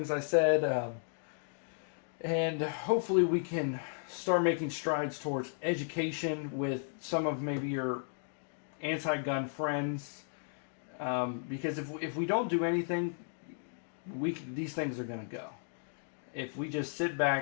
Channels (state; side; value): silent; right; digital silence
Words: I said, and hopefully we can start making strides towards education with some of maybe your anti-gun friends, because if we don't do anything, these things are going to go. If we just sit